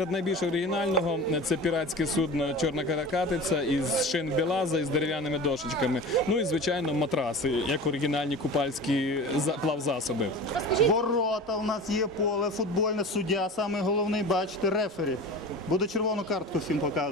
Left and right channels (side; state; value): both; normal; correlation 0.34